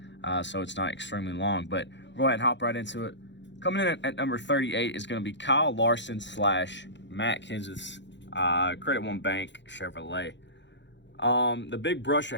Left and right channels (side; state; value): right; late; 0.52 ms